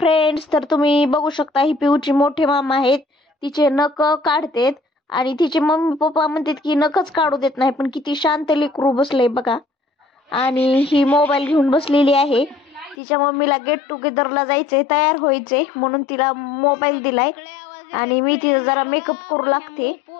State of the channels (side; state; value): right; drops out; at 13.0 s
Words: तर तुम्ही बघू शकता ही पिऊची मोठे मामा आहेत. तिचे नख काढतेत आणि तिचे मम्मी पप्पा म्हणतात की नखच काढू देत नाही, पण किती शांत लेकरू बसले बघा. आणि ही मोबाईल घेऊन बसलेली आहे. तिच्या मम्मीला गेट टुगेदरला जायचंय, तयार व्हायचंय म्हणून तिला मोबाईल दिलाय. आणि मी तिचा जरा मेकअप करू लागते,